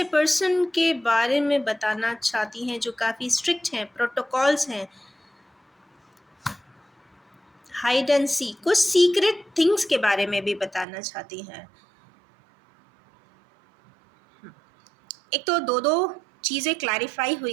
पर्सन के बारे में बताना चाहती हैं जो काफ़ी स्ट्रिक्ट हैं, प्रोटोकॉल्स हैं, हाइड एंड सी, कुछ सीक्रेट थिंग्स के बारे में भी बताना चाहती हैं। एक तो दो दो चीज़ें क्लैरिफाई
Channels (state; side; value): drops out; left; at 10.9 s